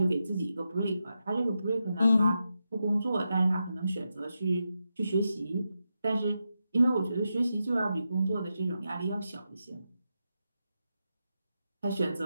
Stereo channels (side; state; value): both; inverted; correlation -0.88